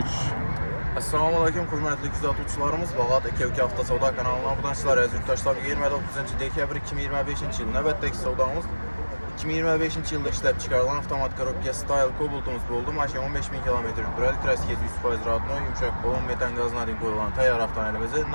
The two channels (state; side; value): inverted; both; correlation -1.00